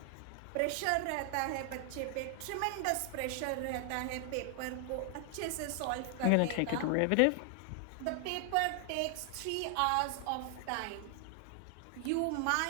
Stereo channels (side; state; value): both; different; correlation 0.00